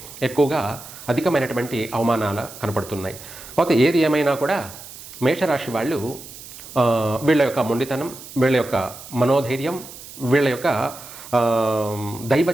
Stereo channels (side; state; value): right; noise; hiss, 15 dB below the sound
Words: ఎక్కువగా అధికమైనటువంటి అవమానాలు కనపడుతున్నాయి. అయితే ఏది ఏమైనా కూడా మేషరాశి వాళ్ళు వీళ్ళ యొక్క మొండితనం, వీళ్ళ యొక్క మనోధైర్యం, వీళ్ళ యొక్క దైవ